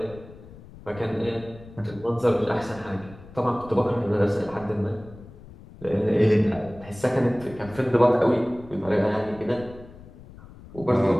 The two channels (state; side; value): noise; left; rumble, 19 dB below the sound